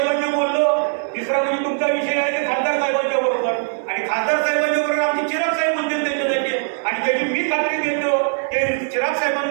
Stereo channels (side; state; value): left; silent; 65 dB below the other